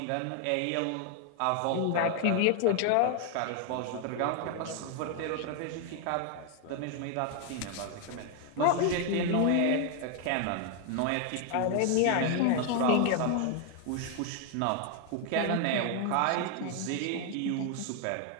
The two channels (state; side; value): different; both; correlation 0.00